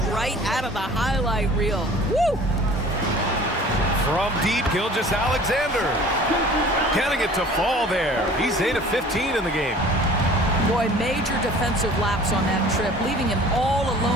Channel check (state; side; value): normal; both; correlation 0.47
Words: right out of the highlight reel. Woo! From deep, Gilgeous-Alexander. Getting it to fall there. He's 8 of 15 in the game. Boy, major defensive lapse on that trip, leaving him all